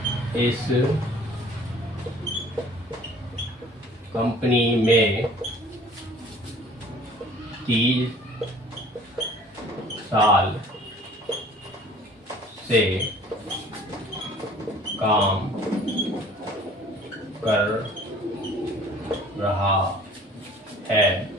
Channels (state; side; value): normal; both; correlation 0.51